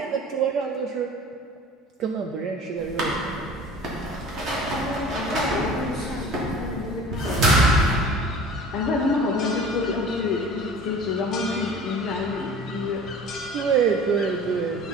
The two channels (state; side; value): normal; both; correlation 0.42